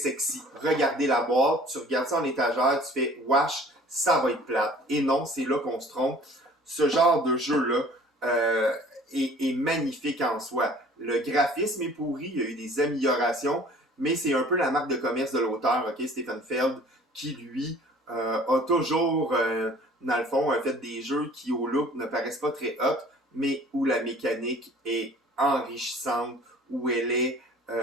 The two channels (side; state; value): both; normal; correlation 0.50